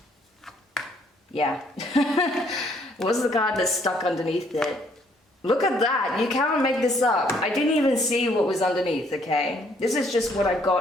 Yeah. What's the card that's stuck underneath it? Look at that. You can't make this up. I didn't even see what was underneath, okay? This is just what I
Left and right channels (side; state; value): both; normal; correlation 0.66